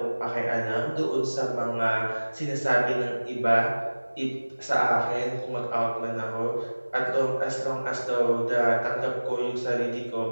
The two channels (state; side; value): inverted; both; correlation -1.00